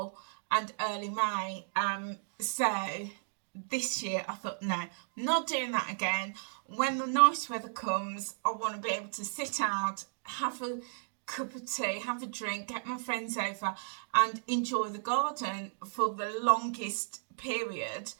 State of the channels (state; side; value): silent; left; digital silence